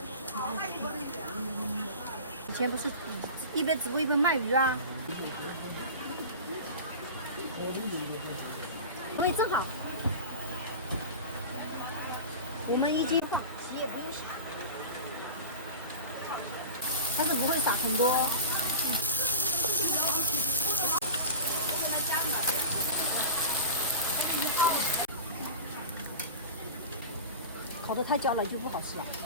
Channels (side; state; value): both; inverted; correlation -0.32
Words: 以前不是一边直播一边卖鱼啊？味正好。我们1斤洗也不用洗，但是不会撒很多。烤得太焦了就不好吃了。